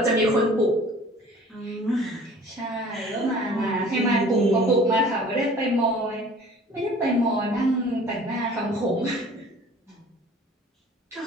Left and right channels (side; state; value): both; normal; correlation 0.48